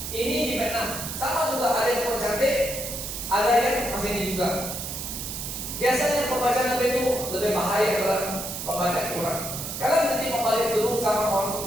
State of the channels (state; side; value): noise; right; hiss, 6 dB below the sound